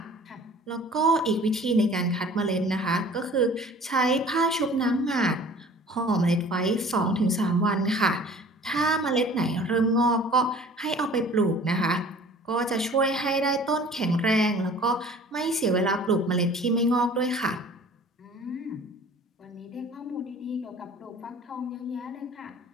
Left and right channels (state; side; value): normal; both; correlation 0.47